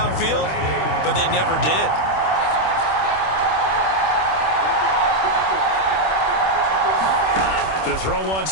but they never did. To throw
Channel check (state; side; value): late; right; 26 ms